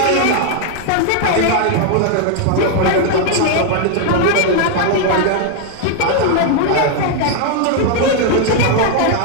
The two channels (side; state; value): both; different; correlation 0.00